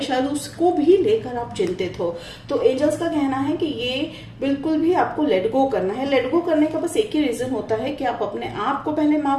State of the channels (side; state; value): both; identical; correlation 1.00